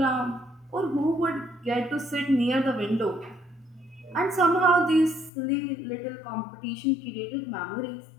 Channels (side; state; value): right; drops out; at 5.3 s